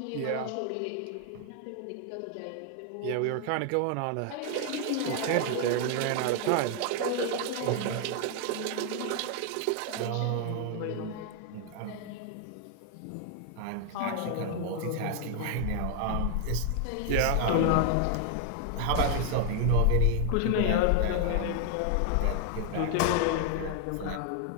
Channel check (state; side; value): different; both; correlation 0.00